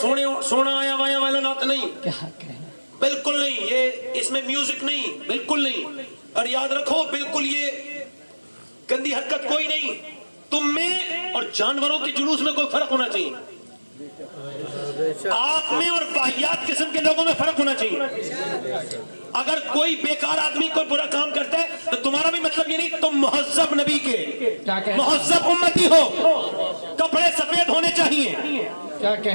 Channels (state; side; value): inverted; both; correlation -1.00